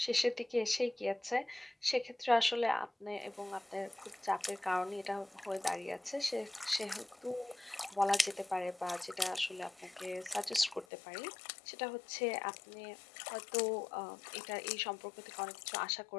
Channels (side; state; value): right; drops out; at 10.9 s